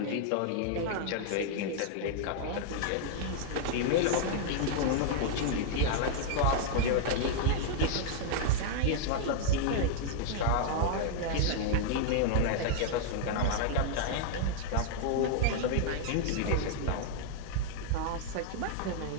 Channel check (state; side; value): different; both; correlation 0.00